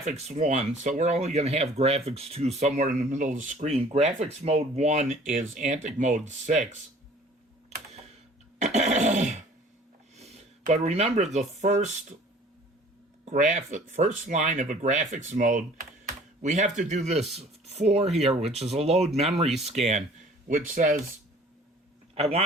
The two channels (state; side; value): normal; both; correlation 0.51